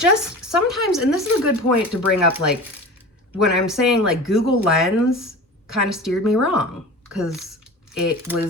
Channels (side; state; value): both; normal; correlation 0.35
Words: sometimes, and this is a good point to bring up, like when I'm saying like Google Lens kind of steered me wrong, because it